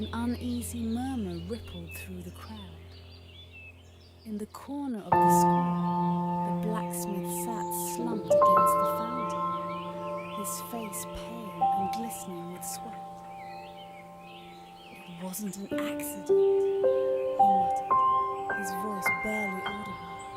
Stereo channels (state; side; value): identical; both; correlation 1.00